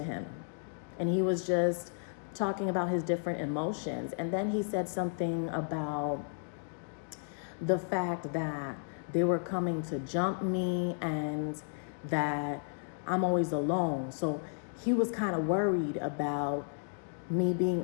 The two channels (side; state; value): right; silent; digital silence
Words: him, and he was just talking about his different emotions. And then he said something about the fact that they were coming to jump me and that I'm always alone. So he was kind of worried about me being